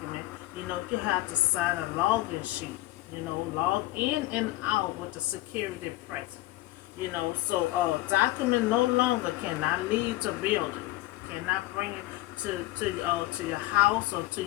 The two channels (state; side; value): quieter; right; 17.4 dB